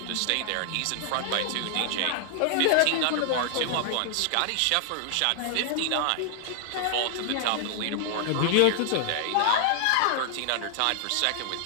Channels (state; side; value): different; both; correlation 0.00